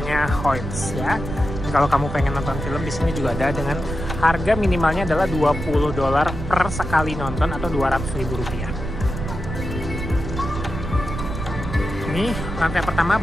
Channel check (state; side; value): noise; right; rumble, 6 dB below the sound